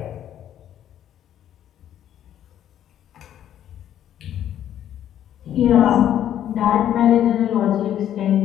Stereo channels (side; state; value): right; quieter; 10.8 dB